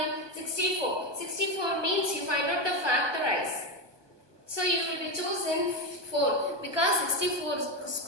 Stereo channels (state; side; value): late; left; 1.2 ms